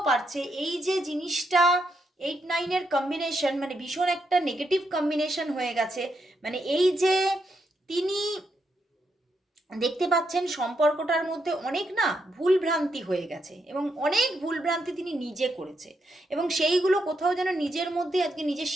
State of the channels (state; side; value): normal; both; correlation 0.80